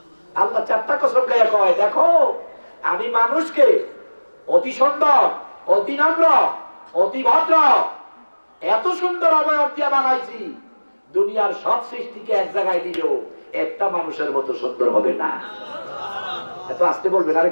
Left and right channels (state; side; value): inverted; both; correlation -1.00